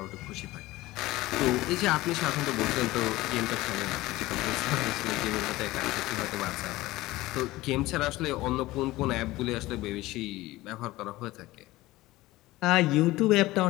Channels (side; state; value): right; quieter; 18.3 dB